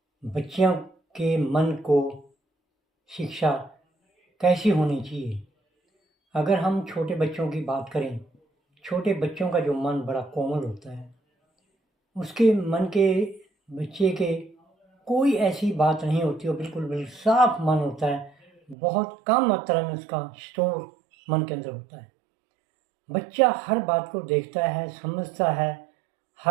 बच्चियों के मन को शिक्षा कैसी होनी चाहिए। अगर हम छोटे बच्चों की बात करें, छोटे बच्चों का जो मन बड़ा कोमल होता है, उसके मन के बच्चे के कोई ऐसी बात नहीं होती, वो बिल्कुल साफ मन होता है। बहुत कम मात्रा में उसका स्टोर मन के अंदर होता है। बच्चा हर बात को देखता है, समझता है।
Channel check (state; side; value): drops out; left; at 18.8 s